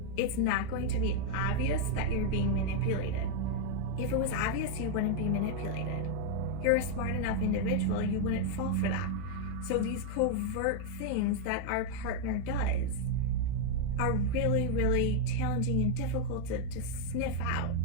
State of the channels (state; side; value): different; both; correlation 0.00